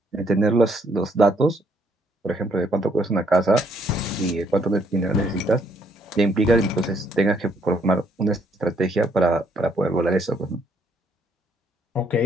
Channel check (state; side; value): normal; both; correlation 0.68